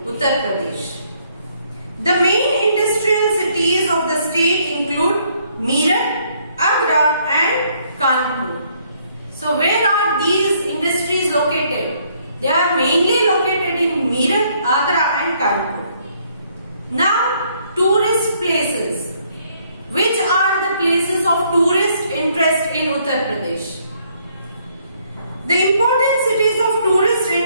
Uttar Pradesh. The main industrial cities of the state include Meerut, Agra and Kanpur. So where are these industries located? They are mainly located in Meerut, Agra and Kanpur. Now, tourist places. Which are the places of tourist interest in Uttar Pradesh? The important cities of tourist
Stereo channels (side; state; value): both; inverted; correlation -0.68